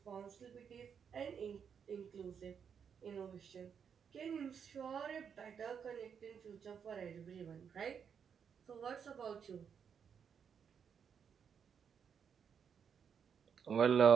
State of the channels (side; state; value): left; quieter; 7.2 dB